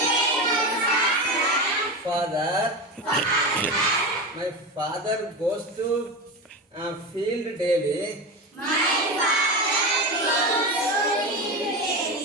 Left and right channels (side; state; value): both; normal; correlation 0.22